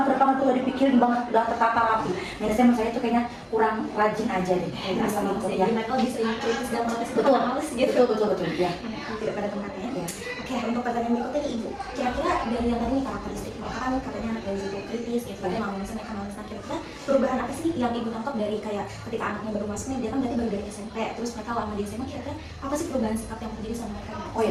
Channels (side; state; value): both; identical; correlation 1.00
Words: tuh udah dipikirin banget, udah tertata rapi. Minusnya menurut saya itu kayaknya kurang rajin aja deh. Asal itu ya. Jadi mereka lebih sering kritis dan protes Betul, males gitu. betul ya. Tidak pada tempatnya. Ya. Oke, untuk pertanyaan berikutnya nih Ibu. Kira-kira dari yang tadi nih karakteristik mereka kan katanya anak Gen Z itu kritis gitu, tapi males mereka males. Nah, kira-kira perubahan apa sih yang Ibu tangkap dari kayak ketika anaknya baru masuk nih, dia kan berarti baru dari SMP, terus mereka lama di SMA, kira-kira apa sih perubahan sikap yang terjadi sama mereka? Oh